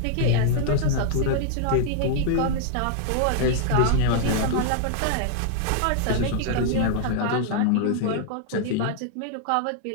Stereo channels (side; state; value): both; different; correlation -0.01